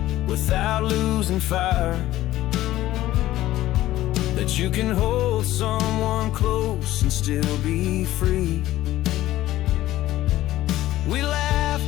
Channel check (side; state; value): right; quieter; 15.0 dB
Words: without losing fire, that you can hold someone close and still be free. We